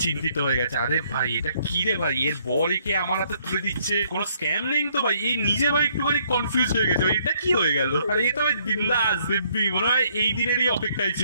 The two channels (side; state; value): both; inverted; correlation -0.67